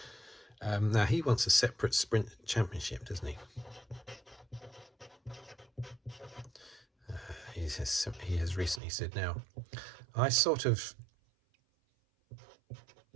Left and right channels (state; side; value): drops out; left; at 8.8 s